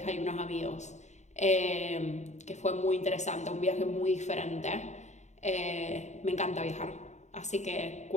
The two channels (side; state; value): right; late; 0.34 ms